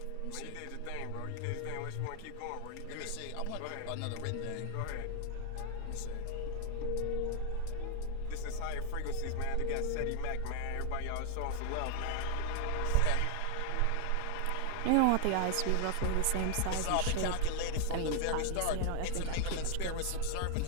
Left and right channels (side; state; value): both; different; correlation 0.00